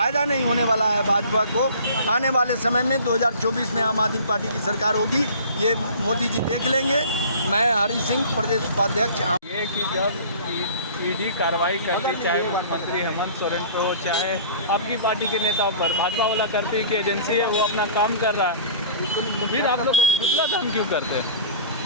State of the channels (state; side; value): inverted; both; correlation -0.44